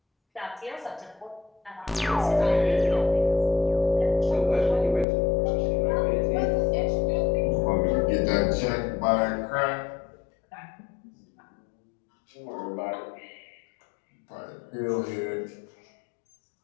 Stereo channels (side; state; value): right; drops out; at 5.1 s